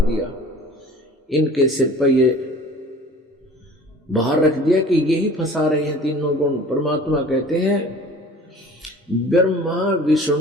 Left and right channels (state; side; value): normal; both; correlation 0.45